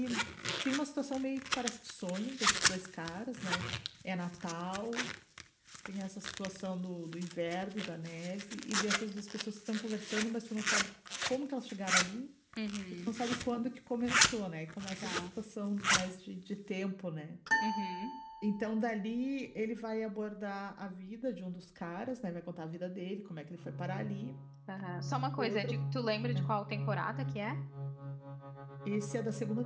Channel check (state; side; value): identical; both; correlation 1.00